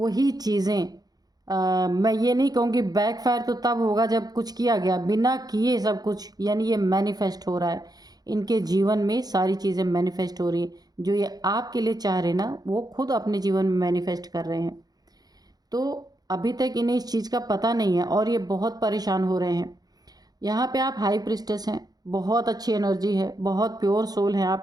चीज़ें, मैं ये नहीं कहूँगी बैकफायर तो तब होगा जब कुछ किया गया, बिना किए सब कुछ, यानी ये मैनिफेस्ट हो रहा है इनके जीवन में। सारी चीज़ें मैनिफेस्ट हो रही हैं, जो ये आपके लिए चाह रहे ना वो खुद अपने जीवन में मैनिफेस्ट कर रहे हैं। तो अभी तक इन्हें इस चीज़ का पता नहीं है और ये बहुत परेशान हो रहे हैं। यहाँ पे आप हाई प्रिस्टेस हैं, बहुत अच्छी एनर्जी है, बहुत प्योर सोल है,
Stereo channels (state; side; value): late; left; 0.19 ms